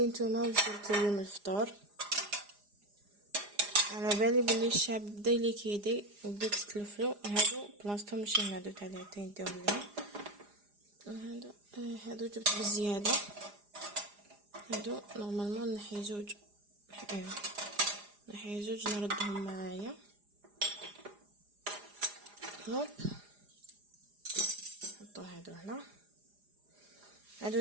نتوما واش درتوا اليوم الفطور. على بالي بلي الشعب بدا ليكيدي وبداو تتلفلو. هادو بلاصتهم ماشي هنا، هادو تاع العتين نديرهم لهم. هادو جبت بزياده. هادو نورمالمون نحي زوج، نحي زوج نردهم معايا. هوب نحطو هادو هنا. هادو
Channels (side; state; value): left; late; 4.9 ms